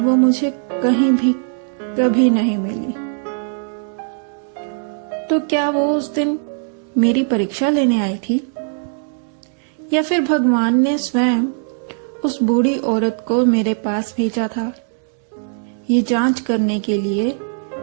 वो मुझे कहीं भी कभी नहीं मिली। तो क्या वो उस दिन मेरी परीक्षा लेने आई थी या फिर भगवान ने स्वयं उस बूढ़ी औरत को मेरे पास भेजा था, ये जांच करने के लिए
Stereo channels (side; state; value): left; silent; digital silence